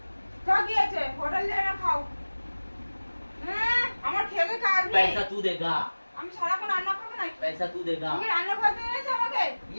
কা কি আছে? হোটেল যাই না খাও। হ্যাঁ, আমার খেতে কাজ নেই। पैसा तू देगा। আমি সারাক্ষণ রান্না করবো নাকি? पैसा तू देगा। তুমি রান্না করতে এনেছো আমাকে?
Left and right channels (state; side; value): inverted; both; correlation -1.00